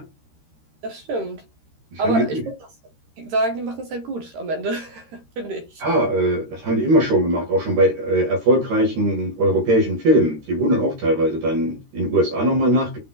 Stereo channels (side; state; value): left; late; 13 ms